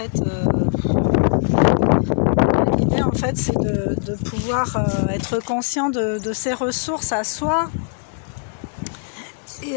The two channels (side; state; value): right; silent; 65 dB below the other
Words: l'idée, en fait, c'est de pouvoir être conscient de ses ressources à soi.